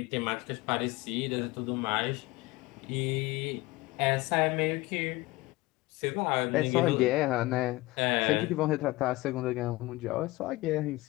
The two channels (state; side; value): quieter; right; 20.5 dB